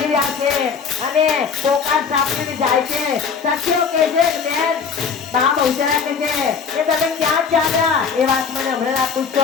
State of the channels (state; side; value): quieter; right; 6.0 dB